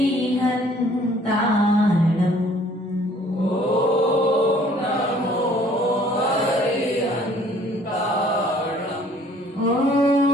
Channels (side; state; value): both; normal; correlation 0.57